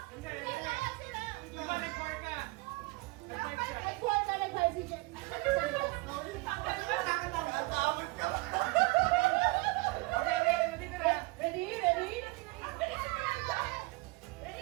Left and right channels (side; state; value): left; quieter; 24.0 dB